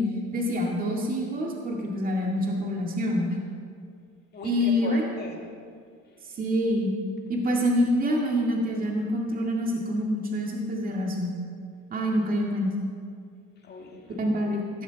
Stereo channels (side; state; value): both; normal; correlation 0.60